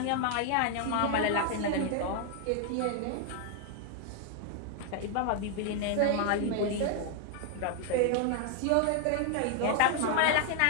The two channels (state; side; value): different; both; correlation 0.00